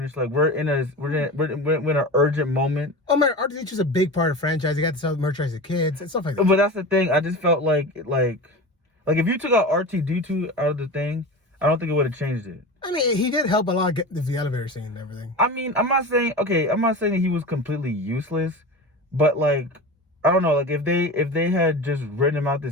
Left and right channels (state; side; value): normal; both; correlation 0.29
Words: Like we're in an urgent moment. Oh man, R2-D2 is a big part of the franchise. You got to sell merchandise to kids and stuff like that. But that's the thing. I just felt like if you took out R2-D2 out of the thing, I don't think it would have changed it. I mean, he did help a lot get the elevator scene and everything. I mean, I'm not saying that he was completely useless, but like, I don't know, like if they had just written him out the